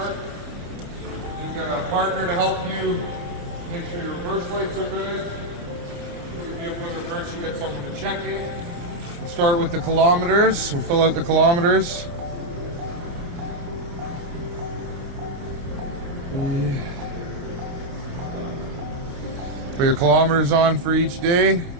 You've got a partner to help you make sure your reverse lights are good. If you reverse, you get someone to check it. We'll start with the kilometers. We'll fill out the kilometers. Put your kilometers on for each day.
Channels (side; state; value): left; late; 29 ms